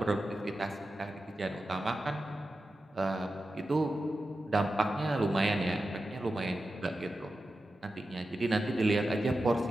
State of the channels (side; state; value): both; normal; correlation 0.91